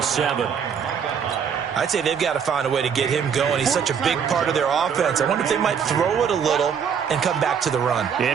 7. I'd say they've got to find a way to get him going. He's such a big part of their offense. I wonder if they might throw it a little and come back to the run.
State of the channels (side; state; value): left; quieter; 7.2 dB